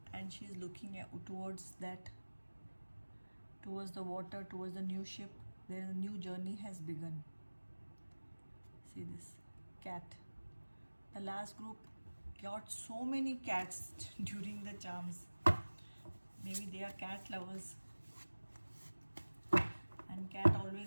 and she's looking towards that, towards the water, towards the new ship. There is a new journey has begun. See this, cat. The last group got so many cats during the charms. Maybe they are cat lovers. And cat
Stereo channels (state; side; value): inverted; both; correlation -1.00